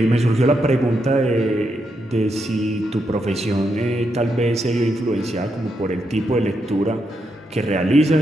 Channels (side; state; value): both; normal; correlation 0.82